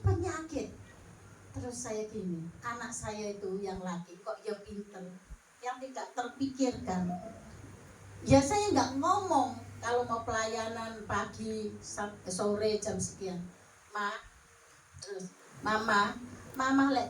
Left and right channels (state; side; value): identical; both; correlation 1.00